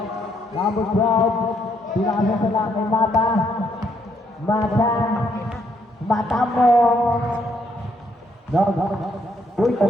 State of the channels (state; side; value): normal; both; correlation 0.73